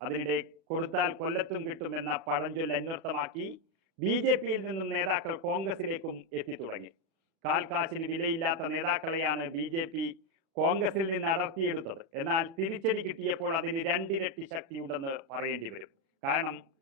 അതിനിടെ കൊടുത്താൽ കൊല്ലത്തും കിട്ടുമെന്ന പഴഞ്ചൊല്ല് അന്വർത്ഥമാക്കി BJPയിൽ നിന്നും നേതാക്കൾ കോൺഗ്രസിലേക്കും എത്തിത്തുടങ്ങി. കാൽക്കാശിന് വിലയില്ലാത്ത നേതാക്കളെയാണ് BJP കോൺഗ്രസിൽ നിന്ന് അടർത്തിയെടുത്തത്. എന്നാൽ തിരിച്ചടി കിട്ടിയപ്പോൾ അതിന് 2 ഇരട്ടി ശക്തിയുണ്ടെന്ന് പറയേണ്ടി വരും. കാരണം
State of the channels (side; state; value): left; late; 37 ms